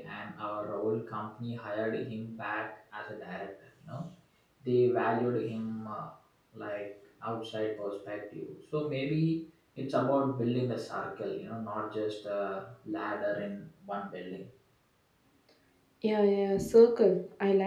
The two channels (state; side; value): identical; both; correlation 1.00